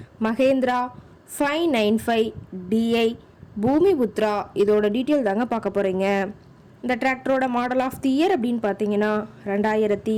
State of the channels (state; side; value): identical; both; correlation 1.00